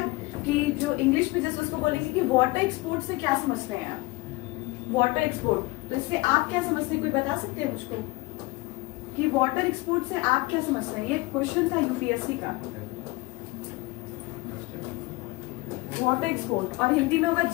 कि जो इंग्लिश में जैसे उसको बोलेंगे कि वाटर एक्सपोर्ट से क्या समझते हैं आप, वाटर एक्सपोर्ट, तो इससे आप क्या समझते हैं, कोई बता सकते हैं मुझको कि वाटर एक्सपोर्ट से आप क्या समझते हैं? ये क्वेश्चन था UPSC का, वाटर एक्सपोर्ट, और हिंदी में होगा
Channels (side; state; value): right; quieter; 22.3 dB